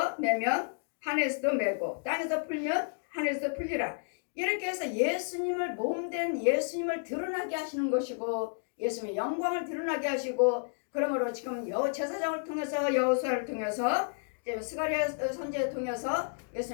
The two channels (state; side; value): silent; right; digital silence